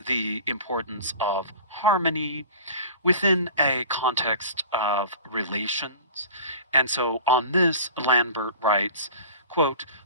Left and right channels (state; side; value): inverted; both; correlation -0.40